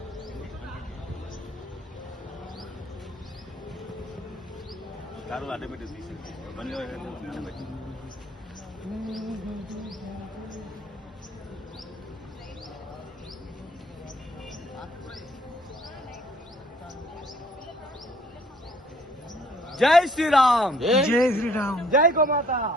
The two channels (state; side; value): normal; both; correlation 0.60